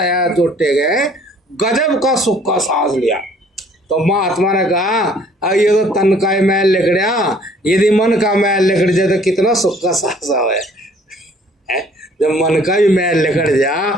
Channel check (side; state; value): both; normal; correlation 0.57